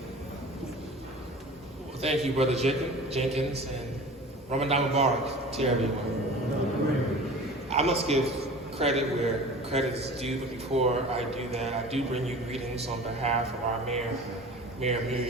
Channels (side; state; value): both; normal; correlation 0.39